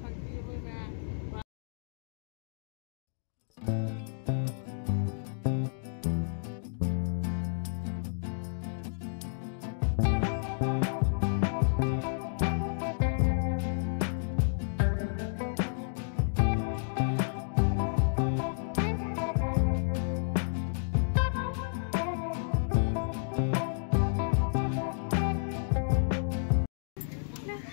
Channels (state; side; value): silent; right; digital silence